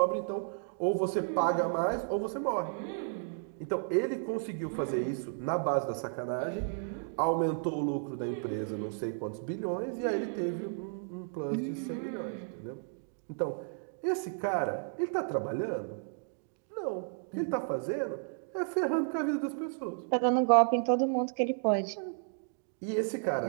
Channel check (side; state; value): left; silent; digital silence